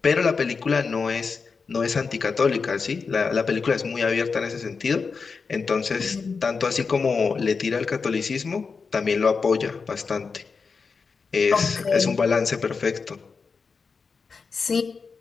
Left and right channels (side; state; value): right; quieter; 5.0 dB